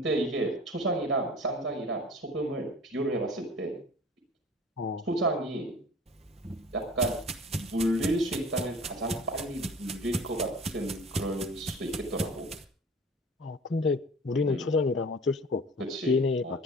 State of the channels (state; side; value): normal; both; correlation 0.43